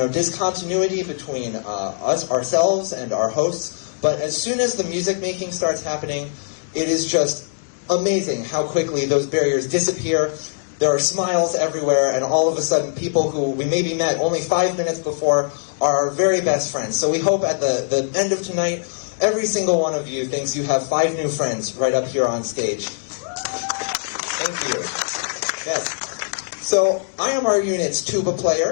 between ourselves and our hosts. But as soon as the music making starts happening, it is just amazing how quickly those barriers disappear. There are smiles everywhere, and all of a sudden people who we maybe met only 5 minutes before are our very best friends. So we hope at the end of tonight, every single one of you thinks you have 5 new friends right up here on stage. Thank you. Yes. So I am our unit's tuba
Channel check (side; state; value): right; silent; digital silence